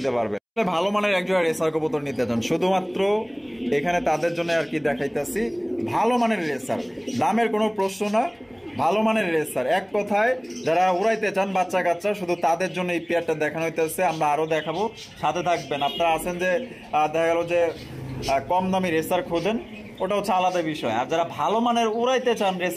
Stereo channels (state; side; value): identical; both; correlation 1.00